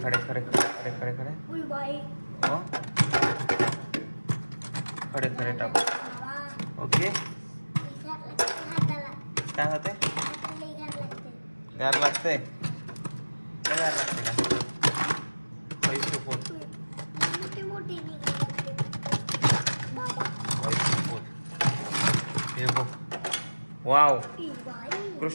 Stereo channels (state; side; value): inverted; both; correlation -1.00